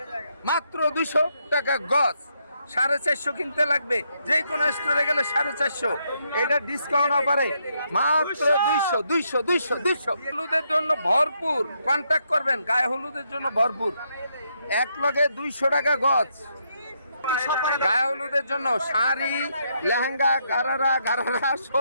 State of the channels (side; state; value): both; inverted; correlation -0.77